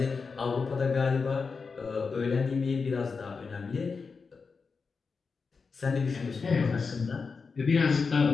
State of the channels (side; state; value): right; quieter; 4.9 dB